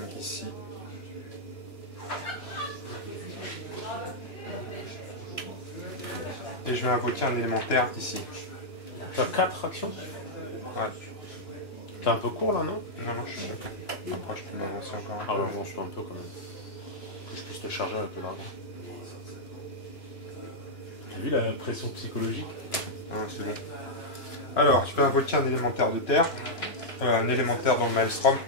ici. Et je vais invoquer un élémentaire ici. T'as 4 actions? Ouais. T'es un peu court là, non? Non, non, je suis bon. Après, je peux m'avancer encore un Ah peu. ouais, bon, je suis un peu quand même. Que je puisse te charger avec le dragon. T'as vu la pression psychologique? Ouais, c'est bon. Alors, je vais invoquer un élémentaire de terre. Un élémentaire dans le Maelstrom.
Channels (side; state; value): right; late; 2.9 ms